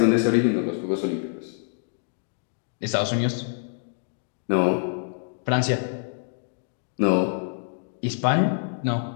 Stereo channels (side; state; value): right; silent; digital silence